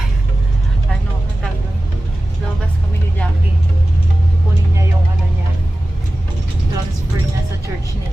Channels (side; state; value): both; normal; correlation 0.95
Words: Ano, ang tawag doon? Labas kami ni Jackie. Kunin niya yung ano niya, transfer niya sa church